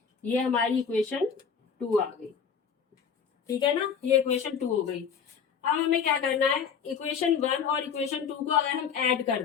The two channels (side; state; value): right; quieter; 6.9 dB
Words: ये हमारी इक्वेशन 2 आ गई। ठीक है ना, ये इक्वेशन 2 हो गई। अब हमें क्या करना है? इक्वेशन 1 और इक्वेशन 2 को अगर हम ऐड कर